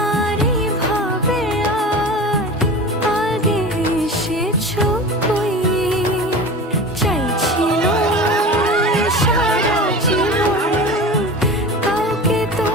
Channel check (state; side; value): normal; both; correlation 0.33